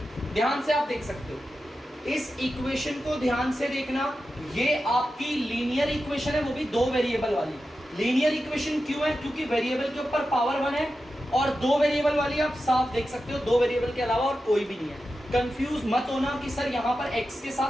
ध्यान से आप देख सकते हो इस इक्वेशन को, ध्यान से देखना। ये आपकी लीनियर इक्वेशन है, वो भी दो वेरिएबल वाली। लीनियर इक्वेशन क्यों है? क्योंकि वेरिएबल के ऊपर पावर 1 है और दो वेरिएबल वाली आप साफ देख सकते हो, दो वेरिएबल के अलावा और कोई भी नहीं है। कंफ्यूज मत होना कि सर यहाँ पर x के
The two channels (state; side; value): normal; both; correlation 0.91